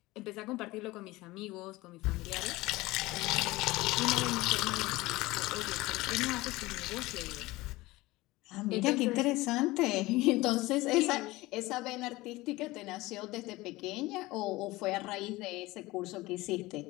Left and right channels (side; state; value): right; quieter; 19.9 dB